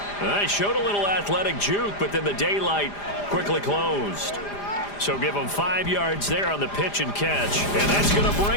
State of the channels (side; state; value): right; late; 4.9 ms